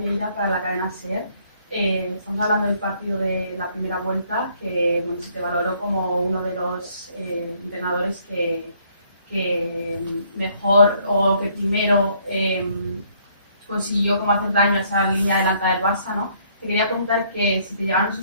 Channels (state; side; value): inverted; both; correlation -0.65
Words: para la cadena SER. Estamos hablando del partido de la primera vuelta, que bueno, se te valoró como uno de los entrenadores que mejor o que primero consiguió como hacer daño a esa línea adelantada del Barça, ¿no? Te quería preguntar que si te llegaron